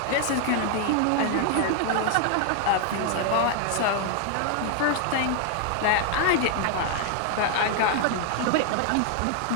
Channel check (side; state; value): both; different; correlation 0.00